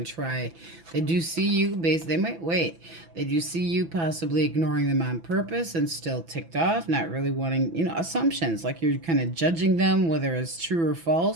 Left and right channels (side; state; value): left; late; 6.0 ms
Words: to try. They do see you, they might wait. They do see you possibly ignoring them on purpose and still ticked off, not really wanting, assumptions, like you're kind of judging them, whether it's true or